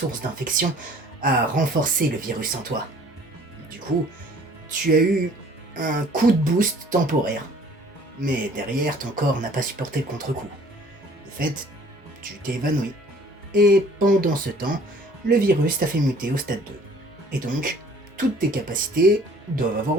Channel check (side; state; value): both; normal; correlation 0.53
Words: d'infection a renforcé le virus en toi. Du coup, tu as eu un coup de boost temporaire. Mais derrière, ton corps n'a pas supporté le contre-coup. De fait, tu t'es évanoui. Et pendant ce temps, le virus t'a fait muter au stade 2. Et donc, toutes tes capacités doivent avoir